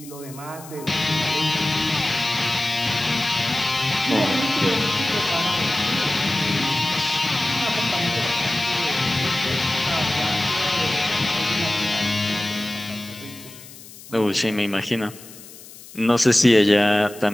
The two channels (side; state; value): left; noise; hiss, 18 dB below the sound